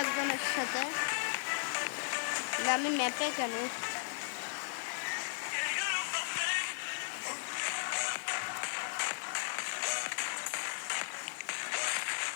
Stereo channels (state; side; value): silent; right; digital silence